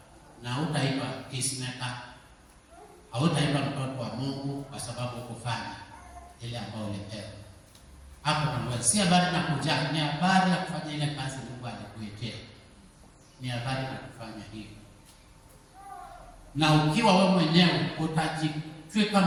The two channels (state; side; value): identical; both; correlation 1.00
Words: Na utaitwa peacemaker. Hautaitwa mtoto wa Mungu kwa sababu ukufanya ile ambayo ulipewa. Hapo ndio si habari na kuja, ni habari ya kufanya ile kazi Mungu alikuitia. Ni habari ya kufanya hivyo. Na ukiwa wewe mwenyewe utajitwika